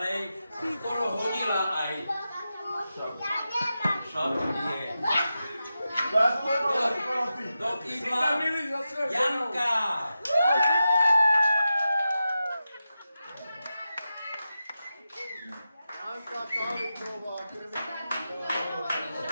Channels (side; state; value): both; inverted; correlation -0.91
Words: Skoro hodila aj šatnie. Do kýbla Janka.